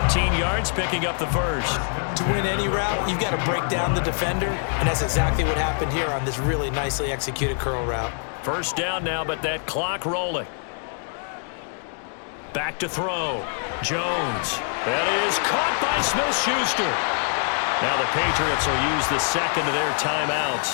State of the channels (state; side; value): silent; right; 56 dB below the other